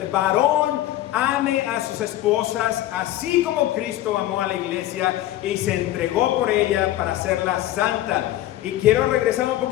varón ame a sus esposas, así como Cristo amó a la iglesia y se entregó por ella para hacerla santa. Y quiero regresar un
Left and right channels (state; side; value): quieter; right; 14.1 dB